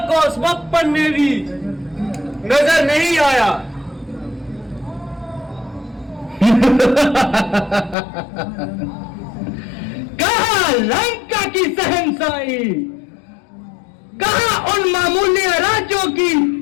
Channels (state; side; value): drops out; right; at 8.0 s